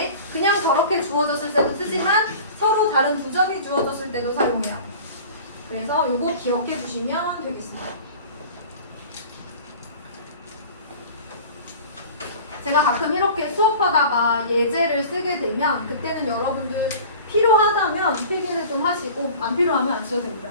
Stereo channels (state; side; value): inverted; both; correlation -0.40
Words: 그냥 저렇게 주어졌을 때도 쓰지만 서로 다른 두 점이 주어졌을 때도 사용해야 돼. 그래서 이거 기억해 주시면 되겠습니다. 제가 가끔 이렇게 수업하다가 예제를 쓰게 되면 그때는 여러분들 필요하다면 필기를 좀 하시고 안 필요하면 안 써도 됩니다.